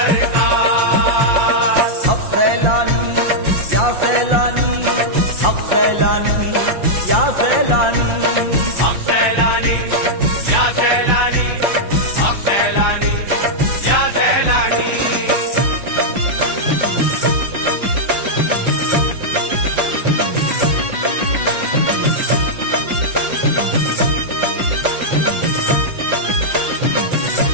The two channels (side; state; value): left; late; 5.7 ms